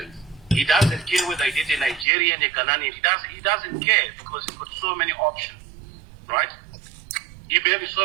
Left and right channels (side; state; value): left; drops out; at 2.1 s